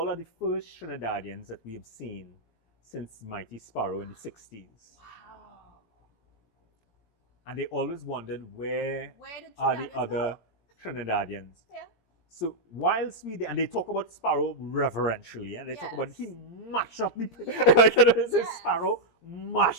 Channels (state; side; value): late; right; 17 ms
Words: are the first Trinidadians that we have seen since Mighty Sparrow in the 60s. Wow. And they always wondered, where are the other Trinidadians? Yeah. So whilst we did, and they talk about Sparrow reverentially, and they talk about he mash up the place. Like, say Sparrow